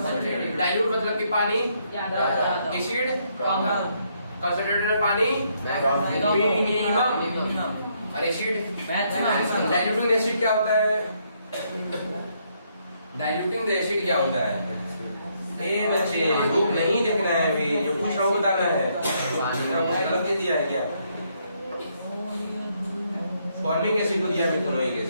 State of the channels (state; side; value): inverted; both; correlation -0.73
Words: डाइल्यूट मतलब कि पानी, एसिड कंसंट्रेटेड में पानी मिनिमम, और एसिड मैक्सिमम। डाइल्यूटिंग एसिड क्या होता है? डाइल्यूटिंग एसिड क्या होता है? ए बच्चे बुक नहीं देखना है अभी, जो पूछ रहा हूँ बताना है। गलत दिया है क्या? फॉर्मिक एसिड को दिया, मिथेनोइक